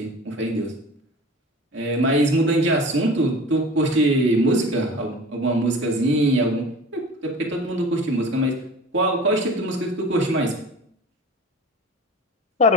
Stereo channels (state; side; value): normal; both; correlation 0.38